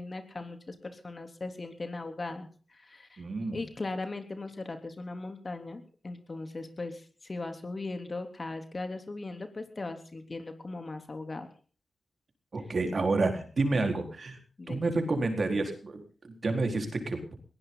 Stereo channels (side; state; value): both; normal; correlation 0.92